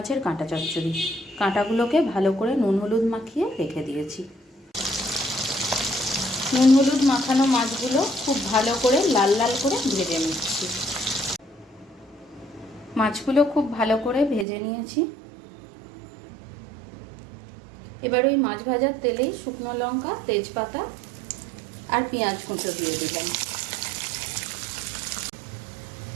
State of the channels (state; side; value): drops out; left; at 14.5 s